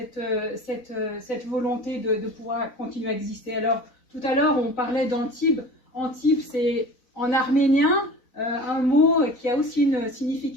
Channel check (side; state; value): right; late; 4.0 ms